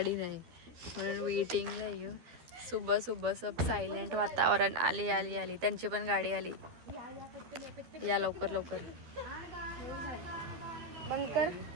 नाही म्हणून वेटिंगला येऊ. सुबह सुबह सब सायलेंट वातावरण. आली त्यांची पण गाडी आली. या लवकर लवकर बंद कर.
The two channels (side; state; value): left; late; 12 ms